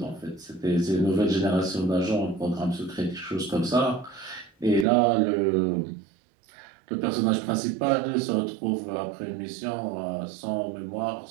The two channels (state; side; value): drops out; left; at 4.9 s